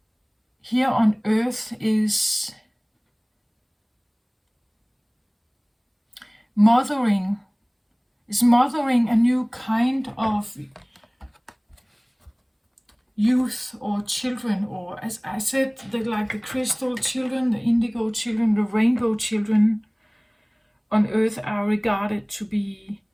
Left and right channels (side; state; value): both; identical; correlation 1.00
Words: here on earth is mothering a new kind of youth or children, or as I said, like the crystal children, the indigo children, the rainbow children on earth are regarded to be